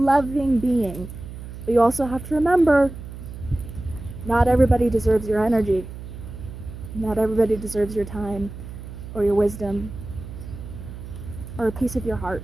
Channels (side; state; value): right; noise; hum, 12 dB below the sound